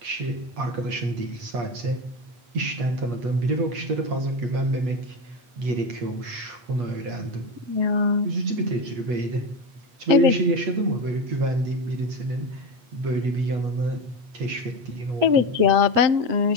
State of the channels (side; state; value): left; late; 8.3 ms